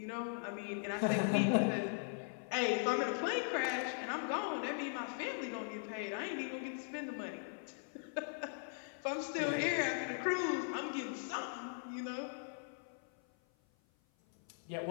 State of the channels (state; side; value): silent; right; 51 dB below the other